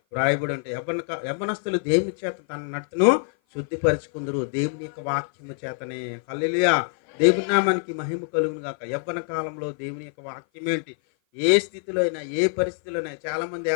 వ్రాయబడి ఉంటాయి, యవ్వనస్తులు దేవుని చేత తన నడతను శుద్ధిపరచుకుందరు దేవుని యొక్క వాక్యము చేతనే. హల్లెలూయా, దేవుని నామానికి మహిమ కలుగును గాక. యవ్వన కాలంలో దేవుని యొక్క వాక్యం ఏంటి, ఏ స్థితిలో అయినా ఏ పరిస్థితిలో అయినా. చాలామంది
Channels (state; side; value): silent; right; 56 dB below the other